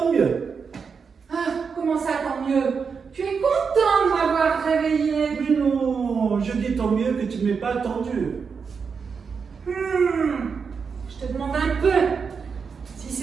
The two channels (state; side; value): quieter; left; 5.8 dB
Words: mieux. Ah, comment ça, tant mieux? Tu es content de m'avoir réveillé. Mais non, je dis tant mieux que tu ne m'aies pas attendu. Je te demande un peu si